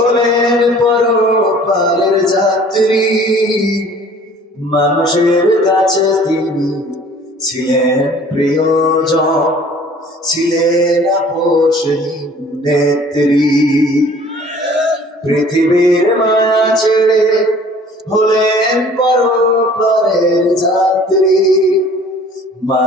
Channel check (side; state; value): both; normal; correlation 0.51